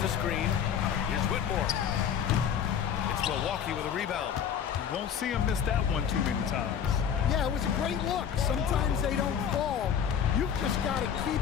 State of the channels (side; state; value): right; quieter; 8.2 dB